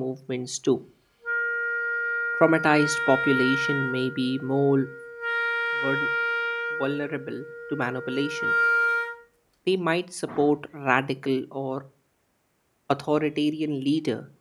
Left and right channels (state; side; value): identical; both; correlation 1.00